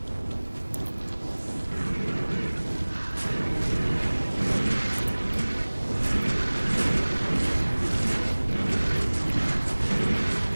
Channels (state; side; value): inverted; both; correlation -1.00